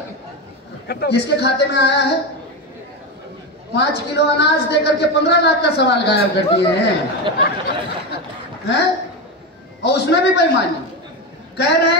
किसके खाते में आया है? 5 किलो अनाज देकर के 15 लाख का सवाल गायब कर दिए हैं? और उसमें भी बेईमानी, कह रहे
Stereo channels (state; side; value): normal; both; correlation 0.16